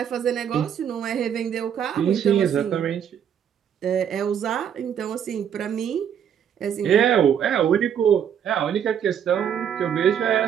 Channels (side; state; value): left; quieter; 8.7 dB